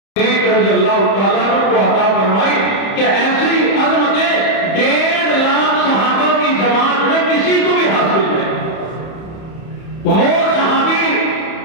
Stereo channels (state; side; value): late; right; 31 ms